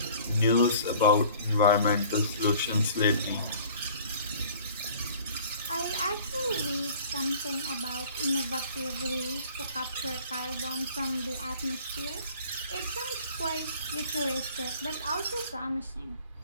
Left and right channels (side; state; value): both; inverted; correlation -0.49